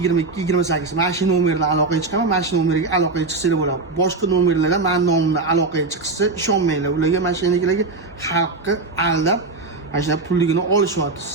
Mana shu nomerdan aloqaga chiqaman, mana shu nomerga aloqaga chiqsanglar bo'ladi. Boshqa nomerlardan men nomimdan aloqaga chiqsa ishonmanglar. Ularga mashinalarga xalqni aldab mana shu pulligini olishyapti.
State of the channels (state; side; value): quieter; left; 3.7 dB